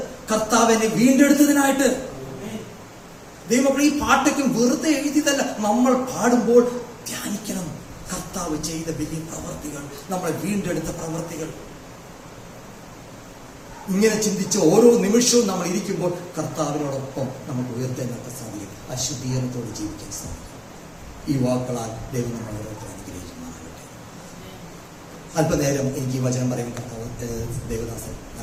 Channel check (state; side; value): identical; both; correlation 1.00